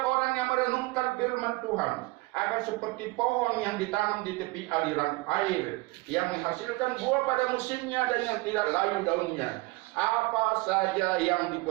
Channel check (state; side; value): quieter; left; 23.3 dB